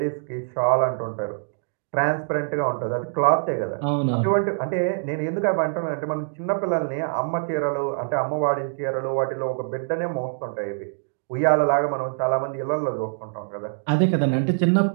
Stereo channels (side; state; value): left; silent; digital silence